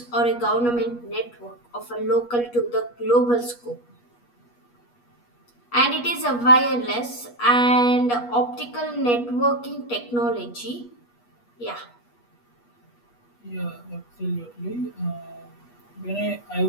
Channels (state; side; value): late; right; 8.3 ms